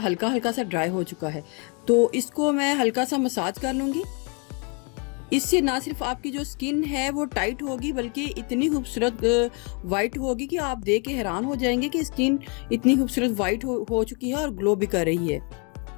हल्का हल्का सा ड्राई हो चुका है, तो इसको मैं हल्का सा मसाज कर लूंगी। इससे ना सिर्फ आपकी जो स्किन है वो टाइट होगी बल्कि इतनी खूबसूरत वाइट होगी कि आप देख के हैरान हो जाएंगे कि स्किन इतनी खूबसूरत वाइट हो चुकी है और ग्लो भी कर रही है।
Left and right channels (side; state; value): right; quieter; 34.1 dB